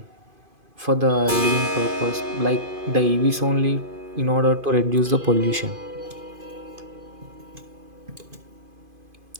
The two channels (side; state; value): left; late; 2.5 ms